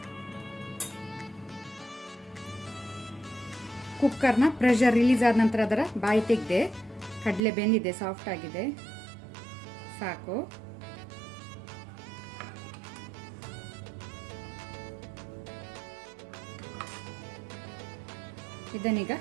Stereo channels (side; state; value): left; drops out; at 7.4 s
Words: ಕುಕ್ಕರ್ನ ಪ್ರೆಷರ್ ರಿಲೀಸ್ ಆದ ನಂತರ ಅದರ ಬಾಯಿ ತೆಗೆದೆ. ಕಡಲೆ ಬೆಂದಿದೆ, ಸಾಫ್ಟ್ ಆಗಿದೆ, ಸಾಕು. ಇದನ್ನೀಗ